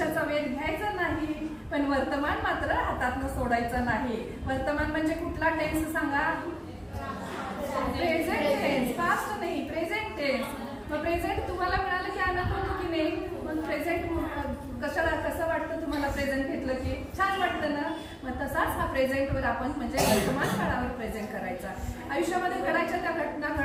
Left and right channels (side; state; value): both; identical; correlation 1.00